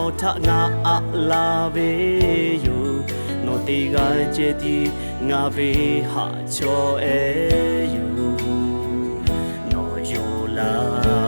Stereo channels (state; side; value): inverted; both; correlation -1.00